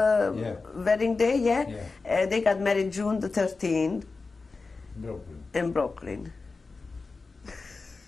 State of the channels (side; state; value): right; quieter; 4.0 dB